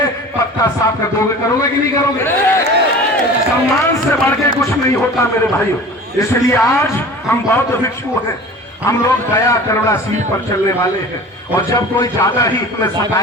पक्का साफ कर दोगे, करोगे कि नहीं करोगे? सम्मान से बढ़ के कुछ नहीं होता मेरे भाइयों। इसलिए आज हम बौद्ध भिक्षु हैं, हम लोग दया करुणा सील पर चलने वाले हैं, और जब कोई ज्यादा ही हमें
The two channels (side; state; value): both; normal; correlation 0.39